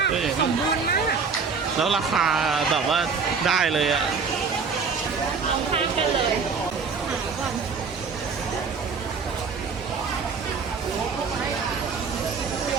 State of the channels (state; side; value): quieter; left; 5.3 dB